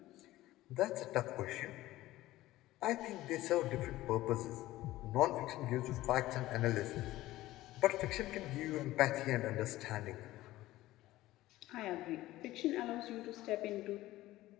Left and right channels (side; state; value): right; quieter; 16.4 dB